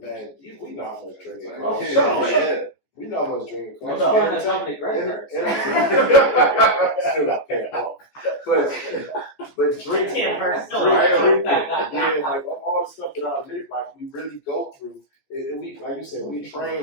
We know how much drinking costs. We know how much drinking costs. That's company credit cards. Still got to pay it off. But drinking, Drinking. yeah, like all the stuff that I live, like we really go through. And we, like you said, we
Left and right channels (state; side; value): late; right; 14 ms